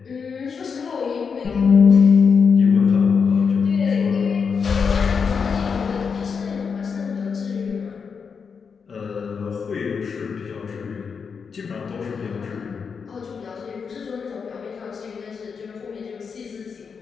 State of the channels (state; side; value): quieter; right; 5.9 dB